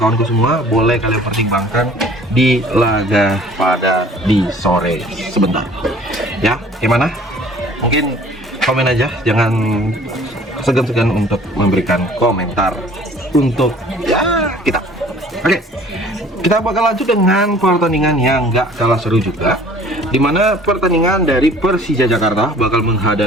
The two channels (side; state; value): both; normal; correlation 0.51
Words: semua. Boleh kalian pertimbangkan di laga pada di sore sebentar. Ya, gimana? Mungkin komen aja, jangan segan-segan untuk memberikan komentar untuk ya kita. Oke, kita bakal lanjut dengan pertandingan yang nggak kalah seru juga, dimana pertandingan dari Persija Jakarta bakal